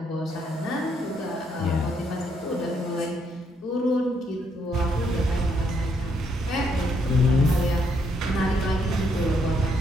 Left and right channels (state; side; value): normal; both; correlation 0.74